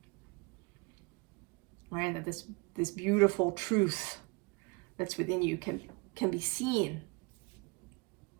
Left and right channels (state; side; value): quieter; left; 29.1 dB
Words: Right, that this beautiful truth that's within you can be seen.